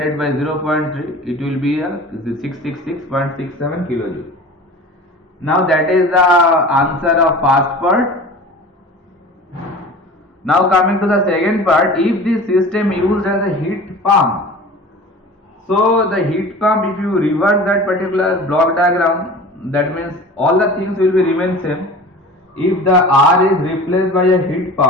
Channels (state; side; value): normal; both; correlation 0.38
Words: by 0.3, it will be 666.67 kilojoule. Now that is the answer of first part. Now coming to the second part, if this system used as a heat pump, so the heat pump, if you reverse that particular block diagram, that means all the things will be remain same. If the R is replaced by a heat